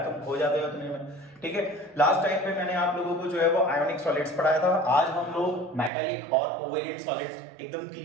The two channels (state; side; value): drops out; left; at 5.9 s